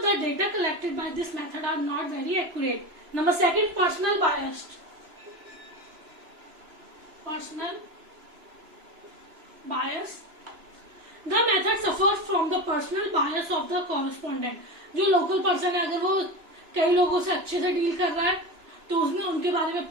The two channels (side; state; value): left; late; 3.0 ms